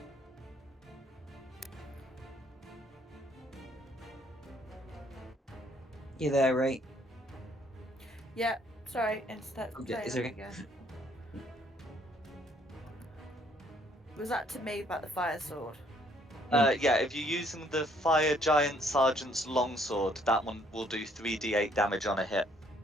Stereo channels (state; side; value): normal; both; correlation 0.65